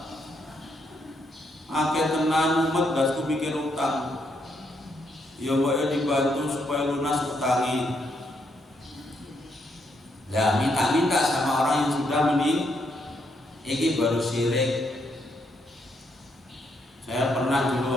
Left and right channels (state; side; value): normal; both; correlation 0.76